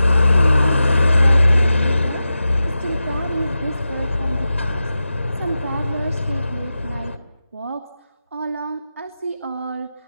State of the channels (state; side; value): inverted; both; correlation -0.92